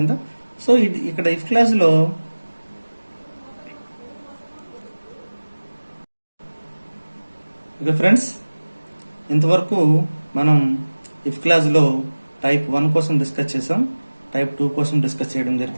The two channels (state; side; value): inverted; both; correlation -1.00